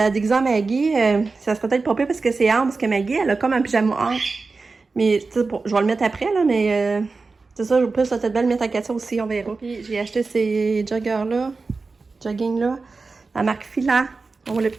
déguiser à Maggie, ça serait peut-être pas pire parce que c'est ample, parce que Maggie, elle a comme un pyjama ample. Mais, tu sais, je vais le mettre après, là, mais c'est ça, je peux peut-être bien le mettre à Katia aussi, on verra. Puis, j'ai acheté ces jogging-là, la marque Fila. On voit le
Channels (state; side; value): quieter; left; 4.1 dB